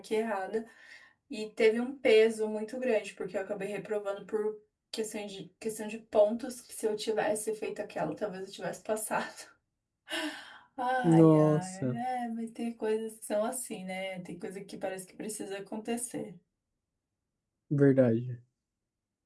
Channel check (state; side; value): identical; both; correlation 1.00